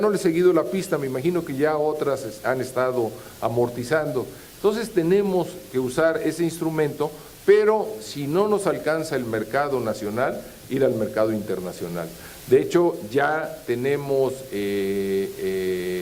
le he seguido la pista, me imagino que ya otras han estado amortizando. Entonces tenemos que usar ese instrumento, pero si no nos alcanza el mercado nacional, ir al mercado internacional. De hecho, ya tenemos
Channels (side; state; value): both; identical; correlation 1.00